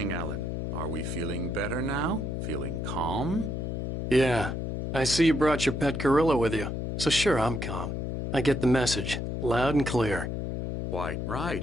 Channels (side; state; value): left; noise; hum, 2 dB below the sound